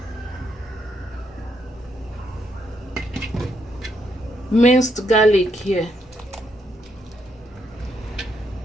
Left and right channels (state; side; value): normal; both; correlation 0.77